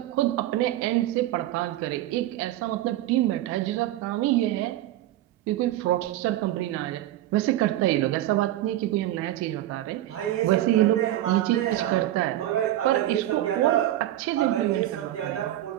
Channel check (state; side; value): quieter; left; 14.0 dB